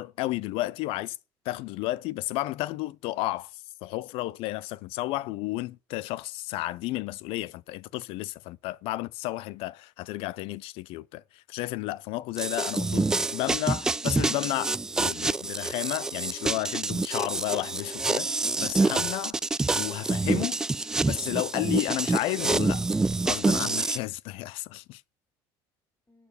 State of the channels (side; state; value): both; normal; correlation 0.46